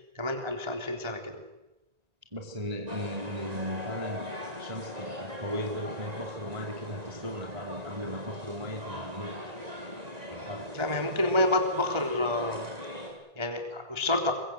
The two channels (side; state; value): left; late; 1.9 ms